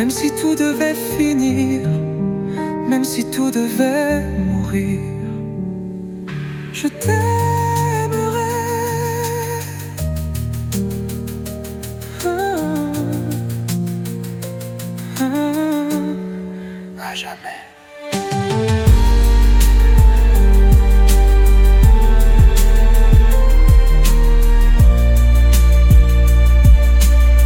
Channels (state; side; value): identical; both; correlation 1.00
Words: si tout devait finir, même si tout devait mourir, je t'aimerai à jamais.